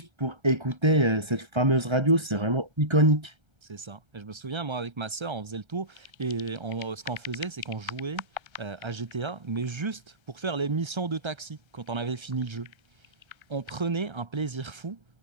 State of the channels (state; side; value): late; left; 1.3 ms